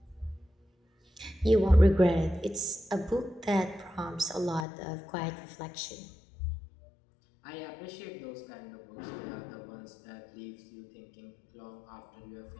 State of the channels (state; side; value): drops out; right; at 4.7 s